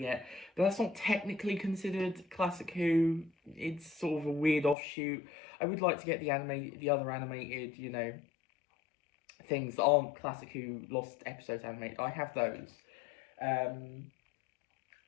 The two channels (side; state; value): right; drops out; at 4.8 s